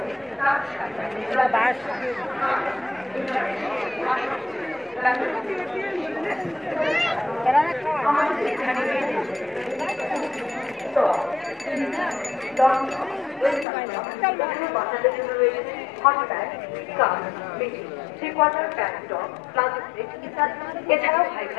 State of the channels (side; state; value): right; drops out; at 13.7 s